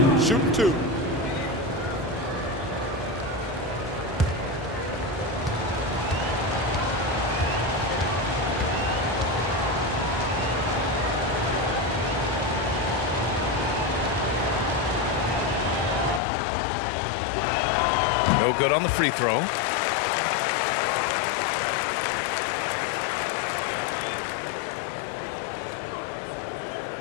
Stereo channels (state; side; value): drops out; right; at 16.2 s